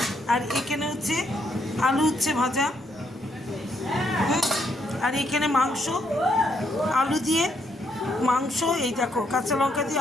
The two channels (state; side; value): normal; both; correlation 0.74